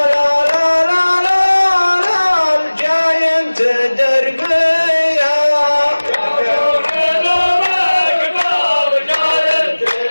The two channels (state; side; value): inverted; both; correlation -1.00